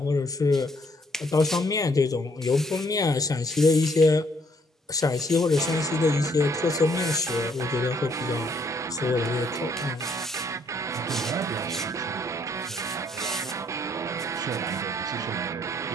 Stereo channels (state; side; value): normal; both; correlation 0.68